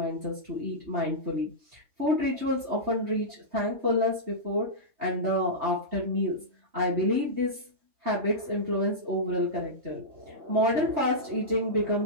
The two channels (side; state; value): left; late; 3.2 ms